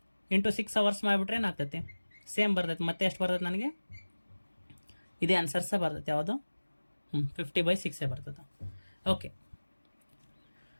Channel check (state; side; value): inverted; both; correlation -1.00